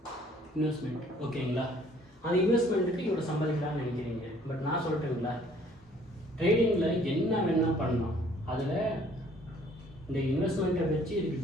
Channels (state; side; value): normal; both; correlation 0.58